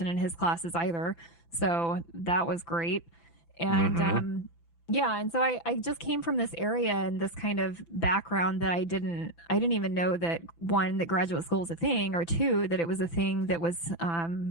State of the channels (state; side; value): late; right; 5.9 ms